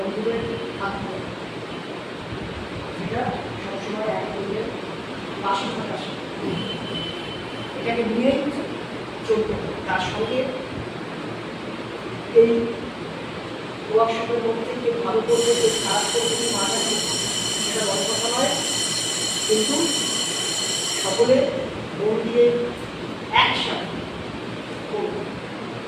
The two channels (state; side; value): identical; both; correlation 1.00